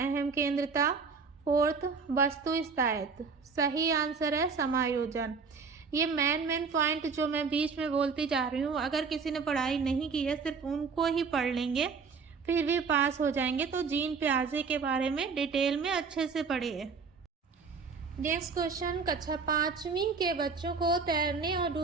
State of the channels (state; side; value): quieter; left; 5.1 dB